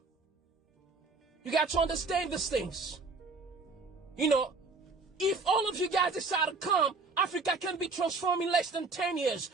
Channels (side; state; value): left; quieter; 3.9 dB